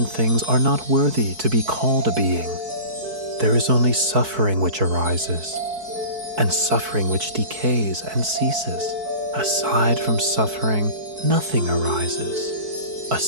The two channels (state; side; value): late; left; 4.6 ms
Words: things are not worthy to be called a being. There is only suffering which arises, and suffering which decays and ceases. Aside from suffering, nothing arises.